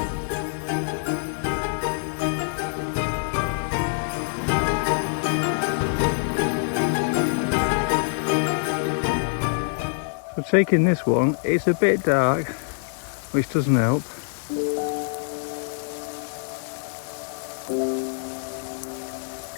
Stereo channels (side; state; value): right; silent; digital silence